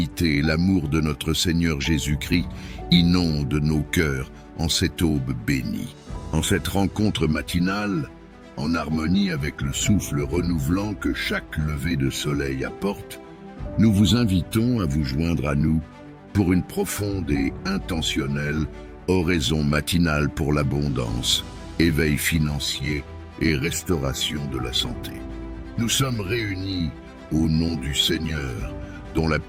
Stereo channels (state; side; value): identical; both; correlation 1.00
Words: et l'amour de notre Seigneur Jésus-Christ inondent nos cœurs en cette aube bénie. En cette rencontre matinale, en harmonie avec le souffle renouvelant que chaque lever de soleil apporte, nous vous invitons à vous joindre à nous pour une profonde et intentionnelle oraison matinale pour l'abondance, éveil financier et restauration de la santé. Nous sommes réunis au nom du Seigneur, dont la